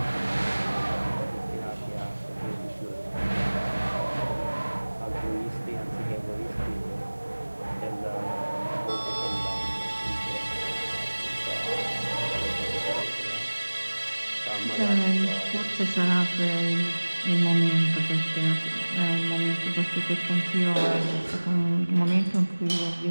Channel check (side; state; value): both; inverted; correlation -1.00